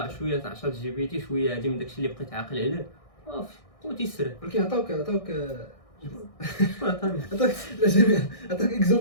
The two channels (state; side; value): late; right; 1.6 ms